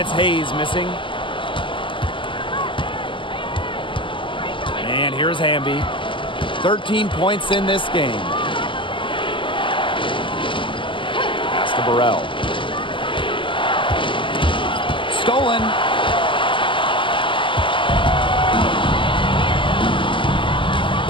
Hayes missing. And here's Hamby. 13 points in this game. Pass to Burrell. Stolen.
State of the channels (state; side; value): late; right; 0.25 ms